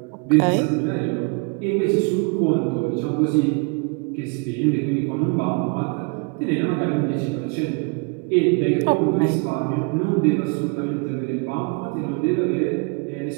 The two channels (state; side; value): quieter; left; 32.7 dB